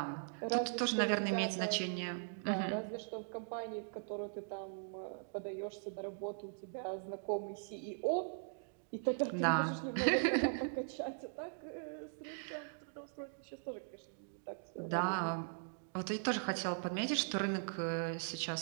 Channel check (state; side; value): silent; left; digital silence